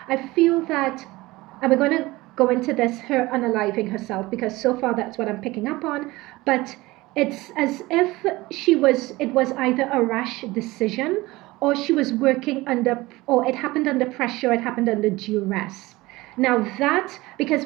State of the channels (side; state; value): left; quieter; 20.2 dB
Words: I feel that, and we're going to go into this, her unaliving herself, because so far that's what I'm picking up on, but it's as if it was either a rash decision, or she was working under, or it happened under pressure, it happened under duress. Now that, because